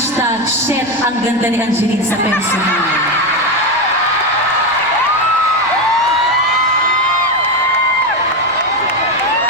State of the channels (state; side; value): noise; right; rumble, 26 dB below the sound